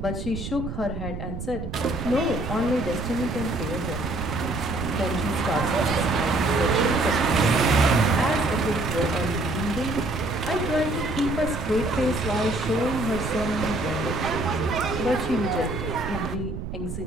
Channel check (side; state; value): right; noise; rumble, 7 dB below the sound